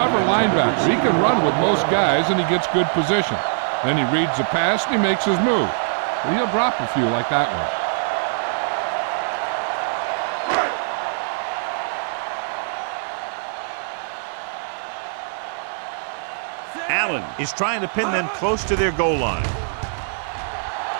linebacker. He can run with most guys and he gets good position. Then he reads the pass and he makes his move. But he'll drop a few like that one. Allen is trying to pin them close to their goal line.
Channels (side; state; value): left; silent; 57 dB below the other